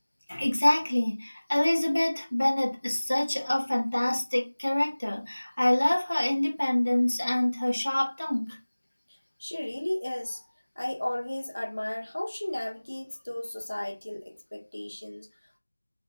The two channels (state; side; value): inverted; both; correlation -1.00